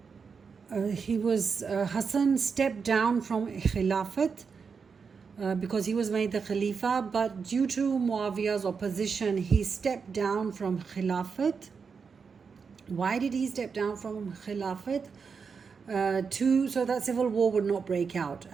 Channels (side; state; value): left; quieter; 5.6 dB